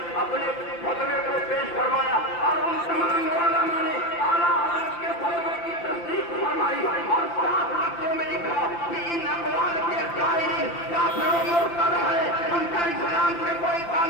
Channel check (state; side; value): late; right; 5.8 ms